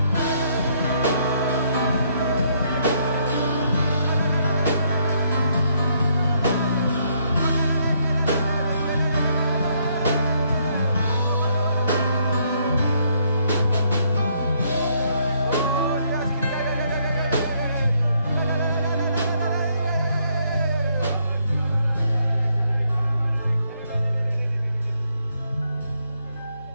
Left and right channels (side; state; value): both; inverted; correlation -0.71